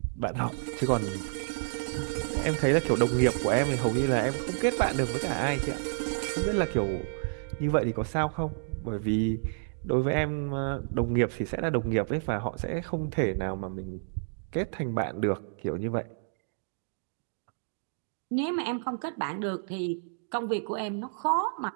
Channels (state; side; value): silent; left; digital silence